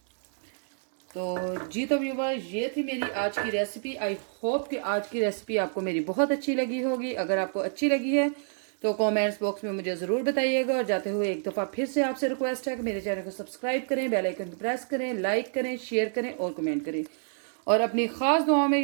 तो जी तो व्यूअर्स, ये थी मेरी आज की रेसिपी। आई होप कि आज की रेसिपी आपको मेरी बहुत अच्छी लगी होगी। अगर आपको अच्छी लगी है तो कमेंट्स बॉक्स में मुझे ज़रूर बताइएगा। और जाते हुए एक दफ़ा फिर से आपसे रिक्वेस्ट है कि मेरे चैनल को सब्सक्राइब करें, बेल आइकन को प्रेस करें, लाइक करें, शेयर करें और कमेंट करें। और अपनी ख़ास दुआओं में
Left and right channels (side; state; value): left; silent; digital silence